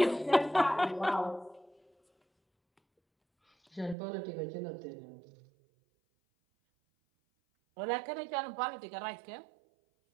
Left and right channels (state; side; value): drops out; left; at 4.0 s